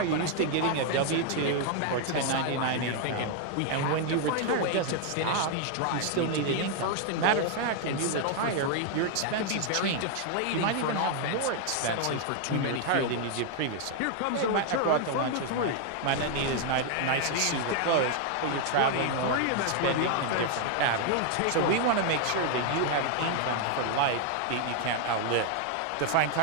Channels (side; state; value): both; different; correlation 0.00